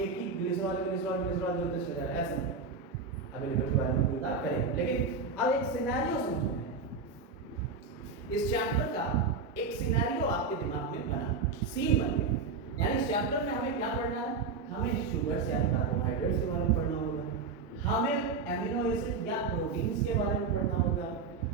ही ग्लिसरॉल ग्लिसरॉल ग्लिसरॉल जोड़ते चले जा रहे हैं, ऐसा नहीं। अभी लिपिड के बारे में बात करें, लेकिन अब एक सिनेरियो समझो। इस चैप्टर का एक सिनेरियो आपके दिमाग में बना, सीन बन गया। यानी इस चैप्टर में हमें क्या पढ़ना है? हमें शुगर्स या कार्बोहाइड्रेट्स के बारे में पढ़ना होगा, हमें एमिनो एसिड या प्रोटीन्स के बारे में पढ़ना होगा,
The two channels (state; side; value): quieter; left; 4.5 dB